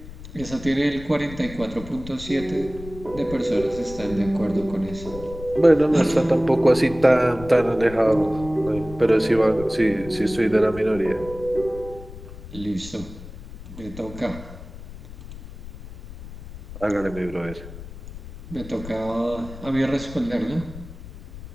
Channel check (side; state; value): left; noise; rumble, 14 dB below the sound